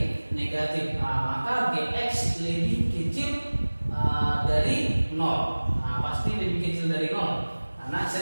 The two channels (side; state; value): both; inverted; correlation -1.00